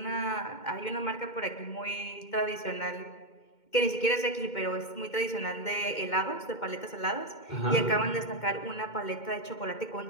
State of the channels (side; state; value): right; late; 2.2 ms